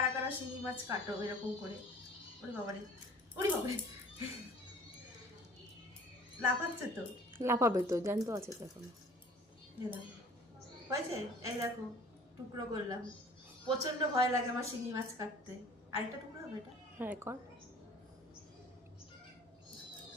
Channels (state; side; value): normal; both; correlation 0.48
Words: কারা শিঙি মাছ কাটো এরকম করে? ওরে বাবারে, ওরে বাবারে, লাফাচ্ছে তো। লাফাবে তো, জ্যান্ত আছে তো এখন। হয়েছে, এই দেখো টুকরো করলাম। প্রচন্ড ভয় লাগে আমার শিঙি মাছ কাটতে। আরেকটা টুকরো হবে এটা। হ্যাঁ কর।